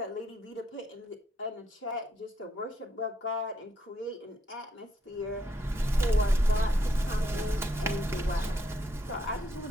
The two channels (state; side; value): normal; both; correlation 0.75